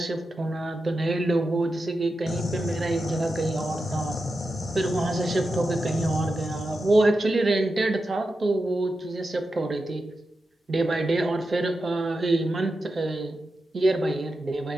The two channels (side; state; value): both; normal; correlation 0.90